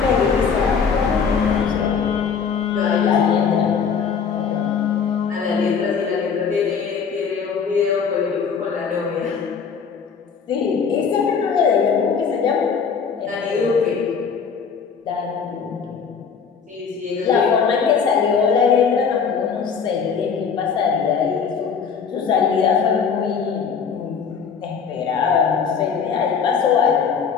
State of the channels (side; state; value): right; quieter; 6.2 dB